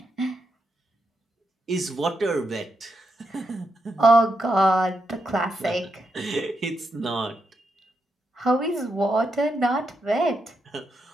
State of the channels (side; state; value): both; normal; correlation 0.83